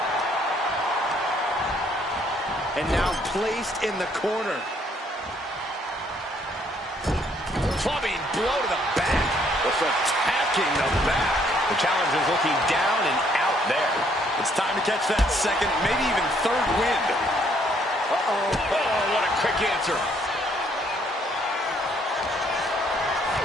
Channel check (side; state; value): both; normal; correlation 0.66